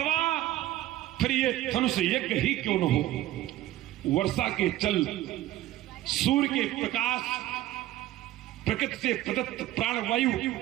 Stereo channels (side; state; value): left; quieter; 14.9 dB